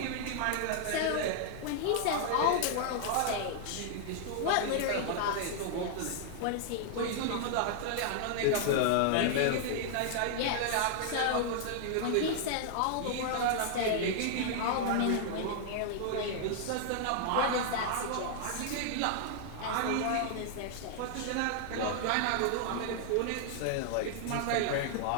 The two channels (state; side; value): different; both; correlation -0.01